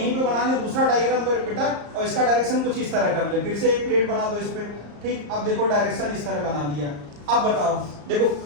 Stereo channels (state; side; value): late; left; 34 ms